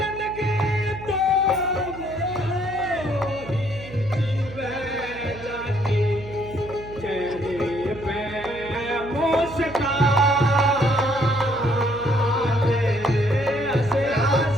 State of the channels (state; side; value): noise; right; hum, 15 dB below the sound